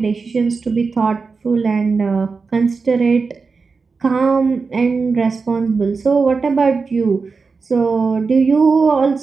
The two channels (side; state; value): left; quieter; 4.6 dB